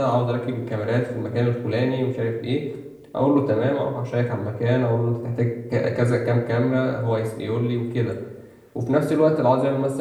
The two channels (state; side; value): identical; both; correlation 1.00